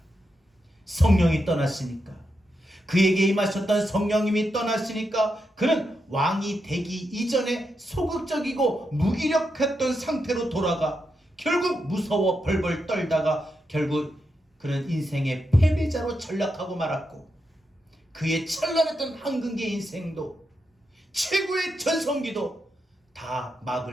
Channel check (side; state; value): both; normal; correlation 0.85